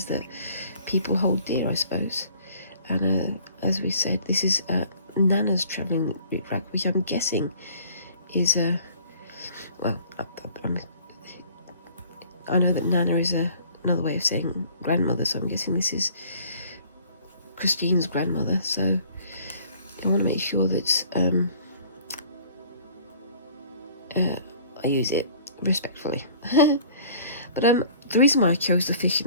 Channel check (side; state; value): both; inverted; correlation -0.53